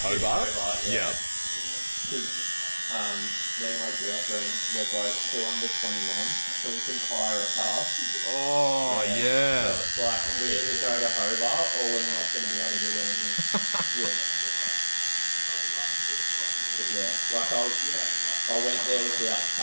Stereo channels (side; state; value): both; inverted; correlation -1.00